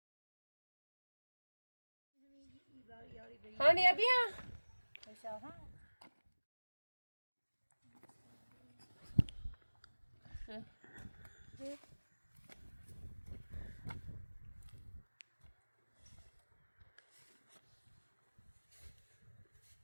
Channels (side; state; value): both; inverted; correlation -1.00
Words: Hani ya bir ya.